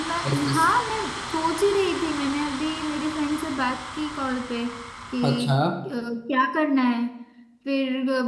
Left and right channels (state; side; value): identical; both; correlation 1.00